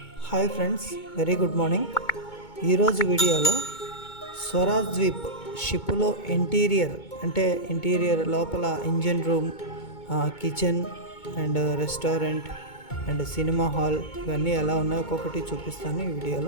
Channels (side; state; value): right; late; 2.2 ms